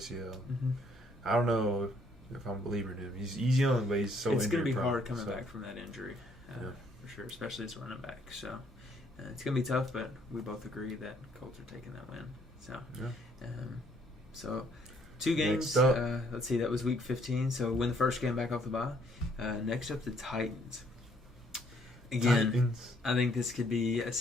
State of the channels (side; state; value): both; normal; correlation 0.66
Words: Mm-hmm. I don't know if I'm believing him. He's young, but he's so injury. It's going to be hard coming back from that injury, for sure, especially as a running back. So it's going to be tough, but we both agree that Colts are taking that win. So 2 games. Let's see, that was week 15. So win the first game back off the bye. Next up, the Titans. Again, I think this could be a